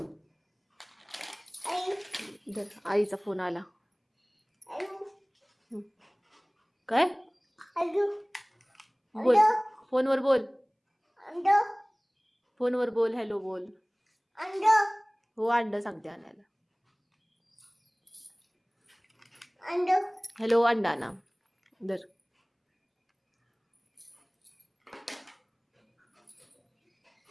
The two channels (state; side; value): identical; both; correlation 1.00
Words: आई धर, आईचा फोन आला. आई काय आई बोल, फोनवर बोल, अंड फोनवर बोल, हॅलो बोल. अंड हो अंड सांगते आणायला. अंड हॅलो अंडा ना धर.